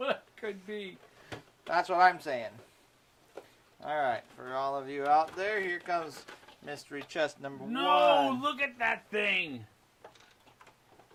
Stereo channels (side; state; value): both; identical; correlation 1.00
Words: could be. That's what I'm saying. All right, for all of you out there, here comes Mystery chest number No, 1. look at that thing.